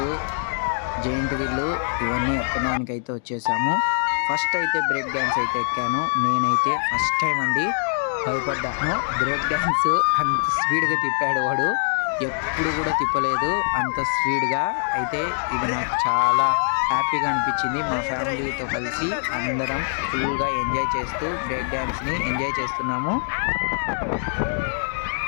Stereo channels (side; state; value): right; silent; digital silence